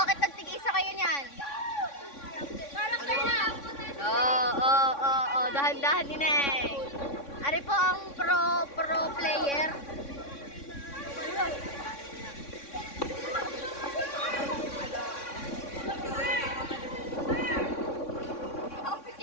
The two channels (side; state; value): right; late; 3.6 ms